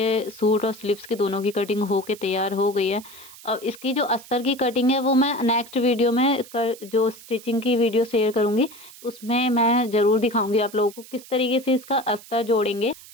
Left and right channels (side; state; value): right; noise; hiss, 19 dB below the sound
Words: सूट और स्लीव्स की दोनों की कटिंग होके तैयार हो गई है। अब इसकी जो अस्तर की कटिंग है वो मैं नेक्स्ट वीडियो में जो स्टिचिंग की वीडियो शेयर करूंगी उसमें मैं ज़रूर दिखाऊंगी आप लोगों को किस तरीके से इसका अस्तर जोड़ेंगे।